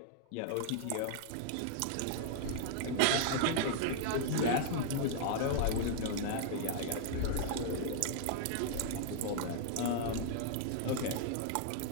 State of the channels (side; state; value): both; different; correlation -0.01